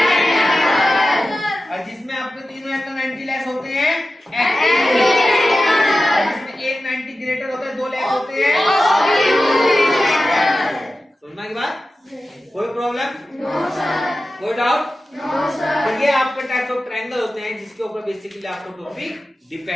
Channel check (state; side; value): normal; both; correlation 0.94